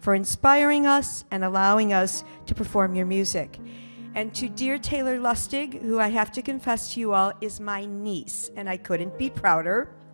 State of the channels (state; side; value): inverted; both; correlation -1.00